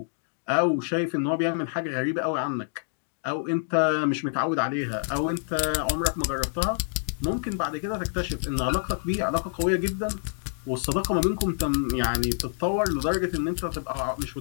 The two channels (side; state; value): right; silent; digital silence